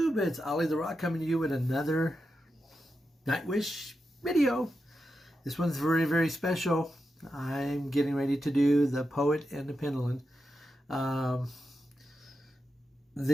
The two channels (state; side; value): normal; both; correlation 0.88